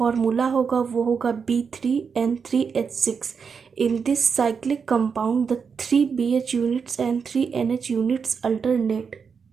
होगा वो होगा B3N3H6। In this cyclic compound the 3 BH units and 3 NH units alternate.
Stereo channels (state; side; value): quieter; left; 6.0 dB